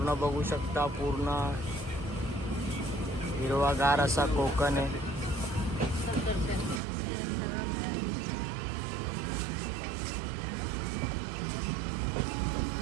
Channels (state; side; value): drops out; left; at 6.8 s